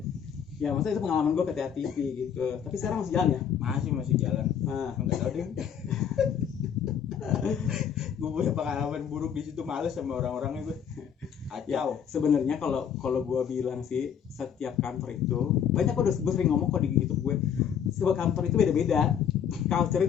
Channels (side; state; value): right; quieter; 8.2 dB